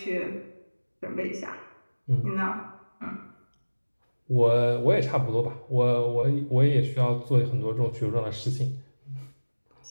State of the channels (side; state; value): both; inverted; correlation -1.00